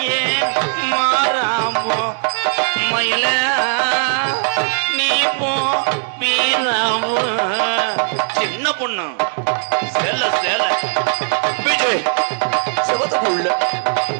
மாறாமோ மயில நீ போ வீராமோ. சின்ன பொண்ணு சேல சேல விஜய் செவத்துக்குள்ள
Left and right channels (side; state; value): left; silent; 67 dB below the other